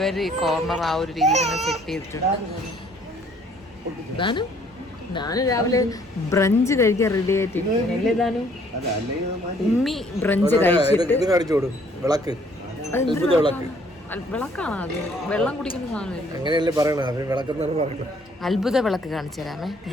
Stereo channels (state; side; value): normal; both; correlation 0.61